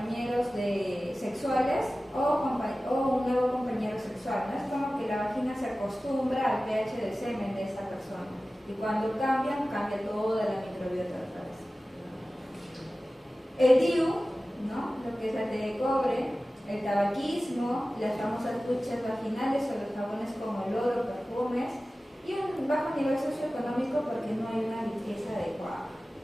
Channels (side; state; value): both; normal; correlation 0.96